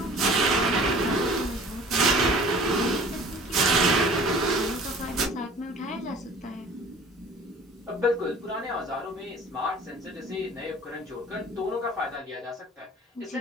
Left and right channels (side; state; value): both; normal; correlation 0.47